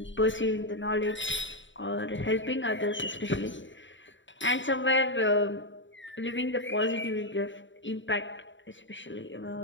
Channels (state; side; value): late; right; 0.55 ms